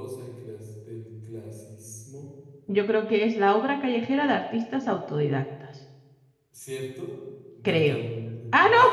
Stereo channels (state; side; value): identical; both; correlation 1.00